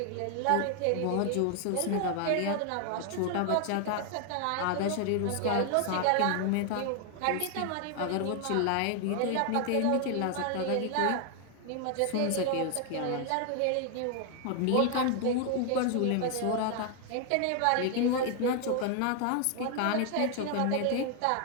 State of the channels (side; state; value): both; different; correlation 0.00